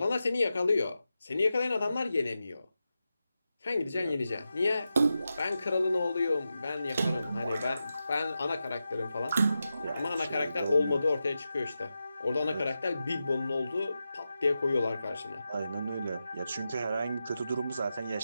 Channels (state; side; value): inverted; both; correlation -0.90